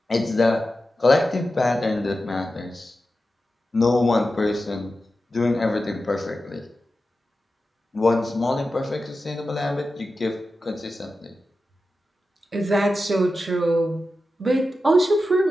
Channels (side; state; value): both; normal; correlation 0.92